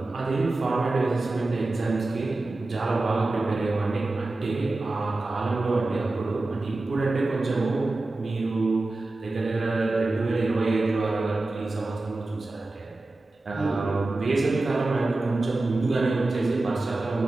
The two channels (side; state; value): left; quieter; 3.0 dB